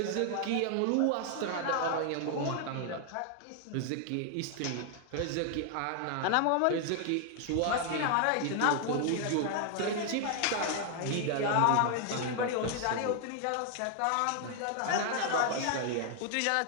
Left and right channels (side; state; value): both; different; correlation 0.00